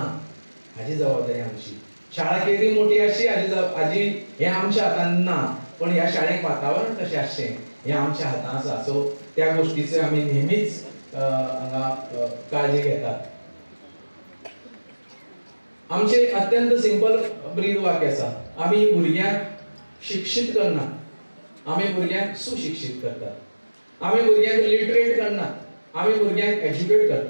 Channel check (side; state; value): both; inverted; correlation -1.00